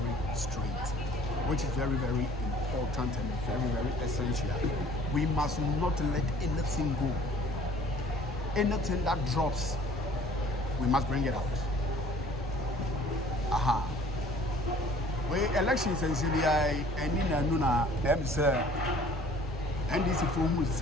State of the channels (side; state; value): both; normal; correlation 0.52